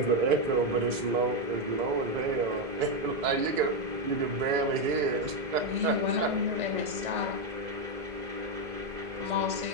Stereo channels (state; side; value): late; left; 2.0 ms